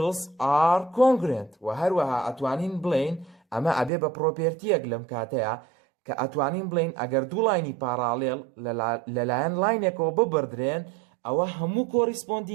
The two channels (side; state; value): left; drops out; at 3.9 s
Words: are congruent. و هەروەها ئەتوانین بڵێن ئەمە ئەبێ بە پرۆپێرتیەک لەم کاتەیە کە ئەتوانین بڵێن ئەگەر دوو لاینی پاراڵێل لەلایەن لاینێکەوە ببردرێن ئەوە هەموو